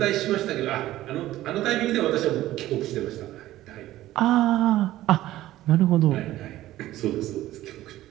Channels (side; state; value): left; quieter; 15.0 dB